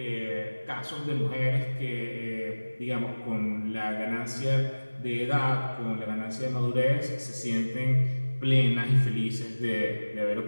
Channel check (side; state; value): both; inverted; correlation -1.00